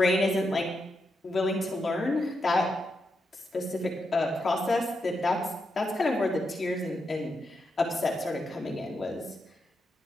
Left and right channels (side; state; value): both; normal; correlation 0.84